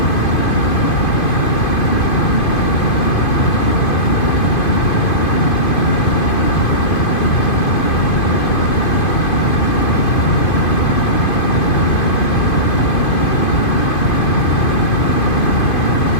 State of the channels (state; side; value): late; right; 2.5 ms